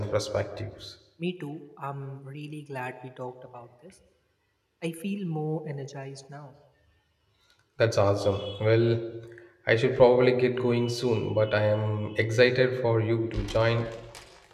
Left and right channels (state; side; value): identical; both; correlation 1.00